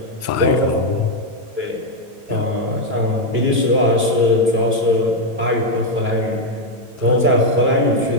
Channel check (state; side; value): late; left; 9.0 ms